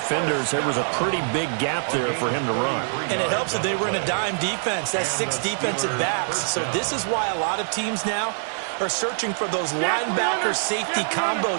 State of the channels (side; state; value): left; silent; digital silence